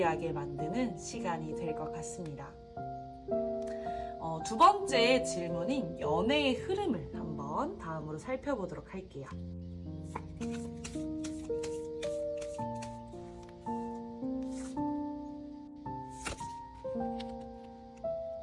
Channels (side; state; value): both; identical; correlation 1.00